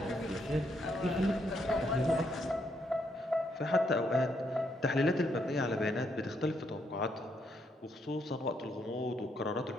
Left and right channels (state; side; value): normal; both; correlation 0.75